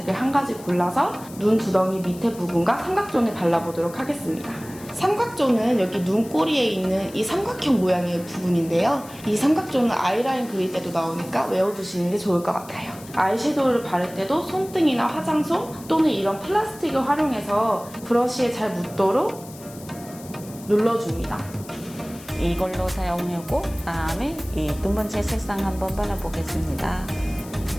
한 가지 골라서 눈 두덩이 밑에 부분과 삼각존에 발라보도록 하겠습니다. 삼각존은 여기 눈꼬리에 있는 이 삼각형 모양의 부분인데요. 이 삼각존은 아이라인 그릴 때도 나오니까 외워두시는 게 좋을 것 같아요. 아이섀도우를 바를 때도 손등이나 화장솜 또는 이런 플라스틱을 활용해서 브러쉬에 잘 묻도록 눌러줍니다. 이걸로 사용하고 다음에 이 두 번째 색상 한번 발라보겠습니다.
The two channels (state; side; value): noise; left; hiss, 19 dB below the sound